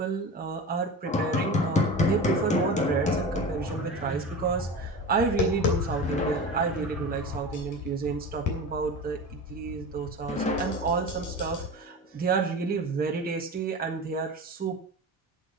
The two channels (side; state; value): both; normal; correlation 0.30